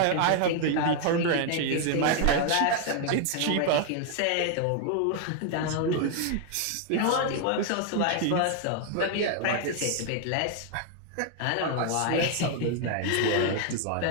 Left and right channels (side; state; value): both; different; correlation 0.00